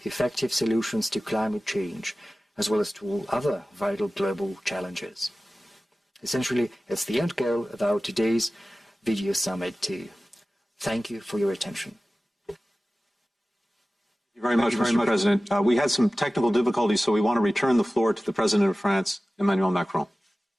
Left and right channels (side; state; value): both; normal; correlation 0.96